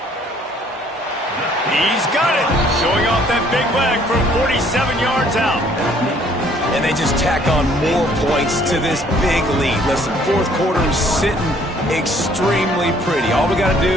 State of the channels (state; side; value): normal; both; correlation 0.60